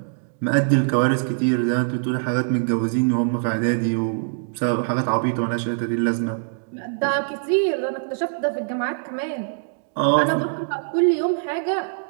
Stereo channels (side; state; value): left; silent; digital silence